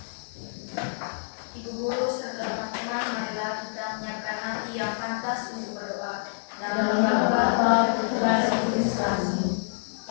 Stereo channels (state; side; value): silent; right; 57 dB below the other